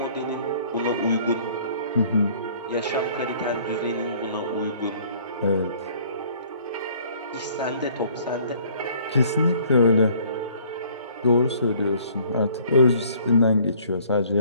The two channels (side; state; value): both; inverted; correlation -0.57